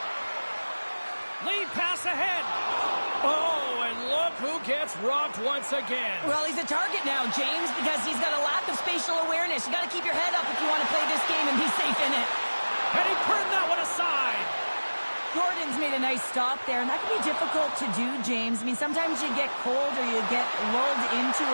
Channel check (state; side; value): inverted; both; correlation -1.00